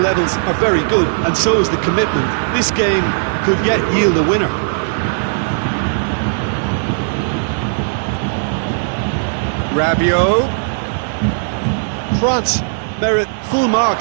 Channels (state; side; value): silent; left; digital silence